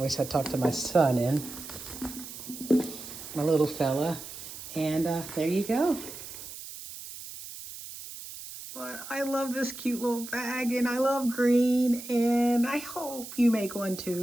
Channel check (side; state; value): right; noise; hiss, 12 dB below the sound